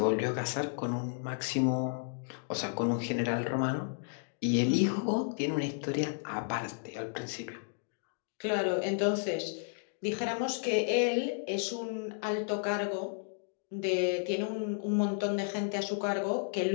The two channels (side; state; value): right; silent; digital silence